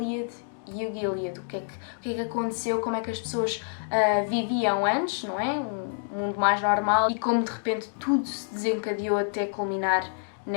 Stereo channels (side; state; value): right; silent; digital silence